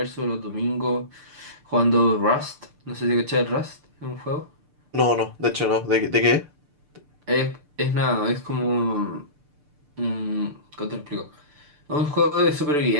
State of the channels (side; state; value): left; late; 6.8 ms